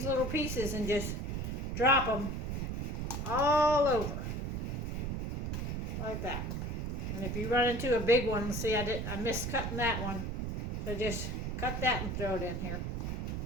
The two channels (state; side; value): noise; right; rumble, 2 dB below the sound